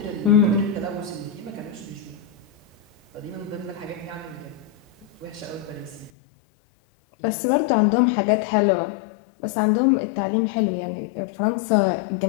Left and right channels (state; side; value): drops out; right; at 6.1 s